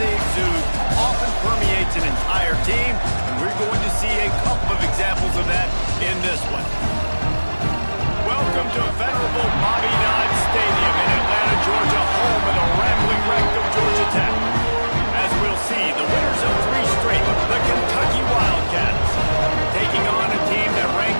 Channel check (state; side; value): inverted; both; correlation -1.00